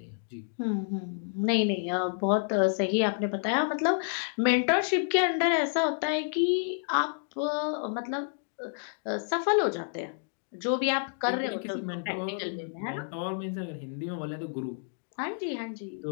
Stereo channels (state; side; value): silent; right; digital silence